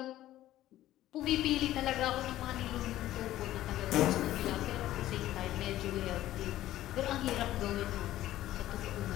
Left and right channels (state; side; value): quieter; right; 14.2 dB